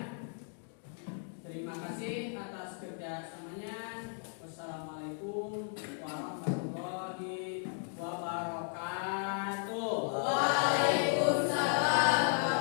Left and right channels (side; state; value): right; silent; 54 dB below the other